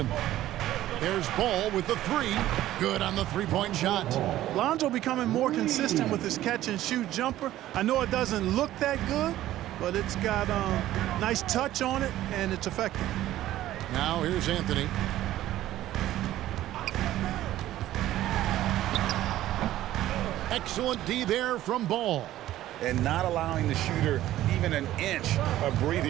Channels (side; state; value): left; quieter; 14.0 dB